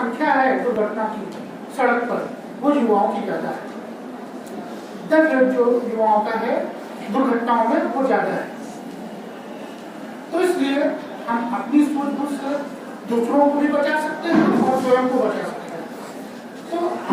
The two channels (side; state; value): both; identical; correlation 1.00